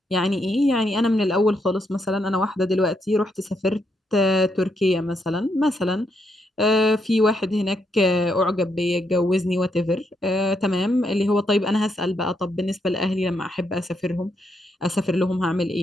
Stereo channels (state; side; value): normal; both; correlation 0.78